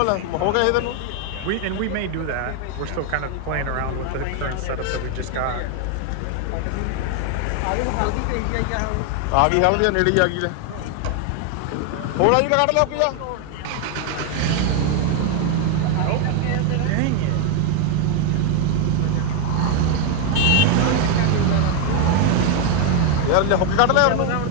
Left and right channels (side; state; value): both; different; correlation 0.01